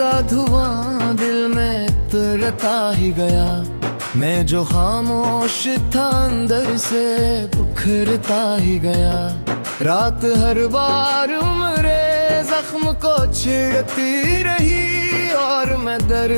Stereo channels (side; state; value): both; inverted; correlation -1.00